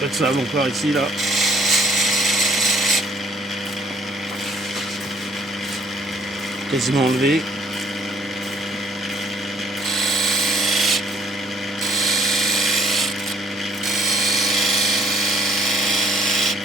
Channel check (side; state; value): both; normal; correlation 0.63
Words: de sable encore ici là. Quasiment enlevé.